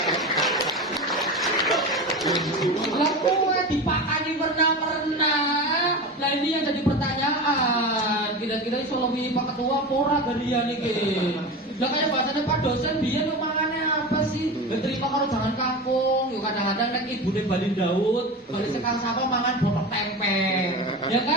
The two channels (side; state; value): both; normal; correlation 0.27